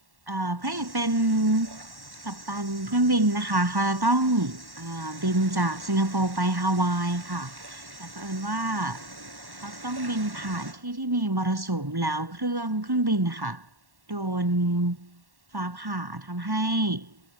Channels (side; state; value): left; late; 1.1 ms